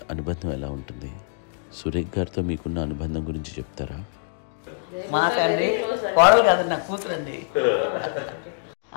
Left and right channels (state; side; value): silent; right; digital silence